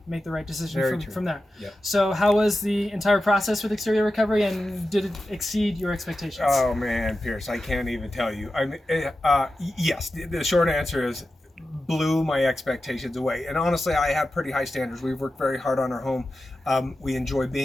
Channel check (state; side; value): normal; both; correlation 0.92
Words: make the right decision from there. Yep. So how was the entire process with Exterior Recovery, and did it exceed your expectations? Oh man, Pierce, I can't even tell you. Yes, the short answer is blew my expectations away. And honestly, I have pretty high standards. We've worked very hard on our home. We enjoy